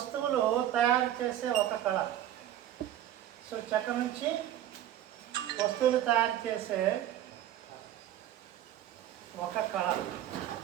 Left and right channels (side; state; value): left; quieter; 12.1 dB